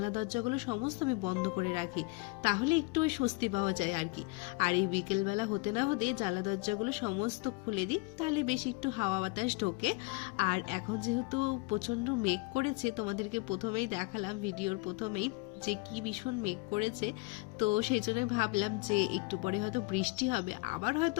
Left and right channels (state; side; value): quieter; right; 26.8 dB